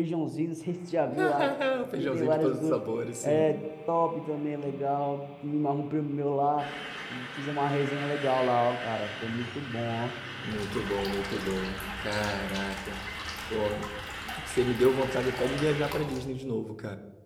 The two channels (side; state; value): both; identical; correlation 1.00